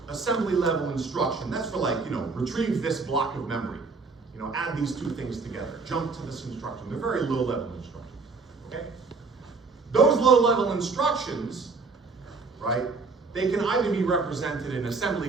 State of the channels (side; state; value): left; quieter; 4.3 dB